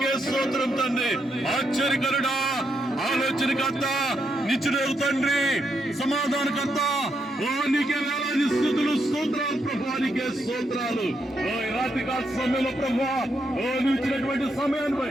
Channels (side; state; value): both; normal; correlation 0.80